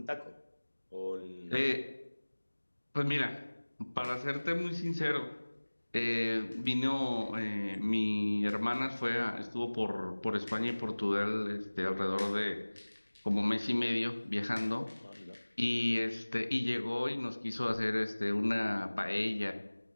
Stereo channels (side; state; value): both; inverted; correlation -1.00